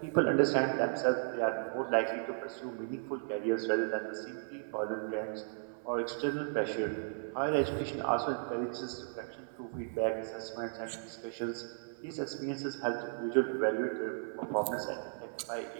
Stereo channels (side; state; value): left; silent; 54 dB below the other